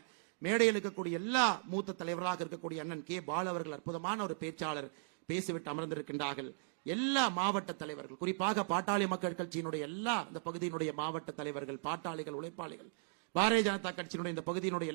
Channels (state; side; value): silent; left; digital silence